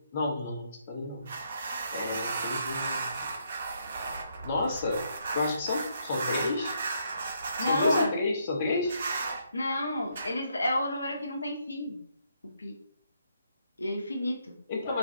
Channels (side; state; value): both; inverted; correlation -0.74